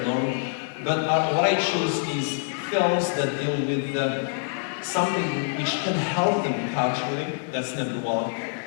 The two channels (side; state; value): right; silent; digital silence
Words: long. But what I choose is films that deal with something which can help them culturally, that's number one.